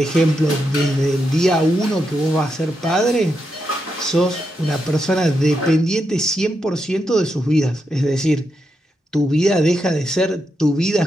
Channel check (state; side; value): normal; both; correlation 0.84